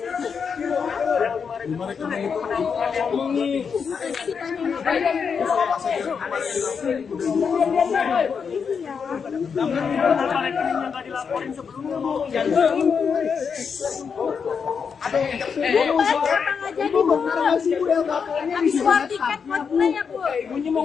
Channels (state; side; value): quieter; right; 6.2 dB